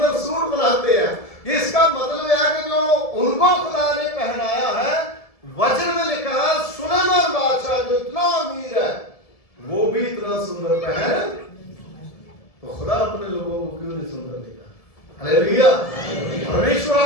सूट बनाते हैं। इसका मतलब है कि जो उनको खुदा ने पहनाया है, वचन में लिखा है सुलेमान बादशाह जो इतना अमीर है वो भी इतना सुंदर पहन, तो खुदा अपने लोगों को क्यों नहीं सुंदर देगा? हालेलुया। परमेश्वर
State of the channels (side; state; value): right; late; 1.7 ms